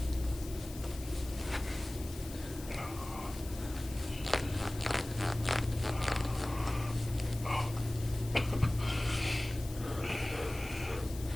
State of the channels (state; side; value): noise; left; hiss, 15 dB below the sound